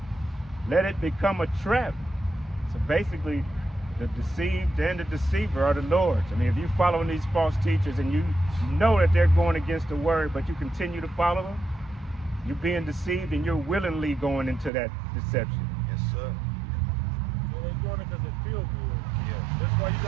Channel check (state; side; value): drops out; left; at 14.7 s